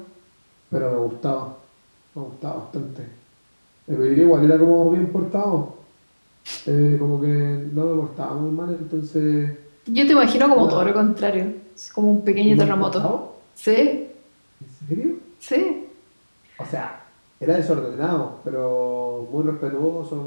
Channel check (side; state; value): both; inverted; correlation -1.00